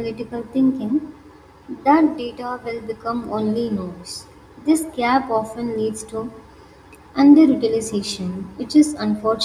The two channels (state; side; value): identical; both; correlation 1.00